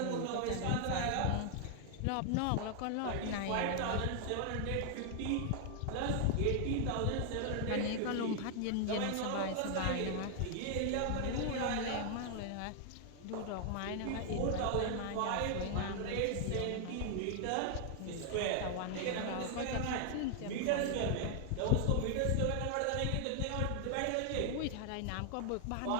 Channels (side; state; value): both; different; correlation 0.00